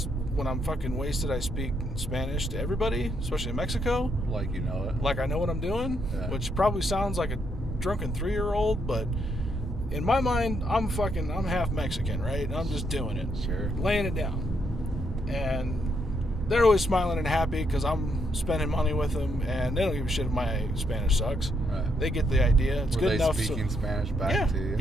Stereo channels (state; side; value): normal; both; correlation 0.76